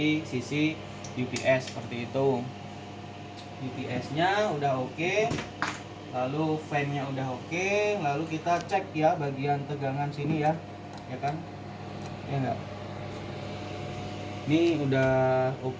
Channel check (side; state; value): both; identical; correlation 1.00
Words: sisi UPS seperti itu. UPS-nya udah oke. Lalu fan-nya udah oke. Lalu kita cek ya bagian tegangan sini ya. Ya kan? Ya enggak? Ini udah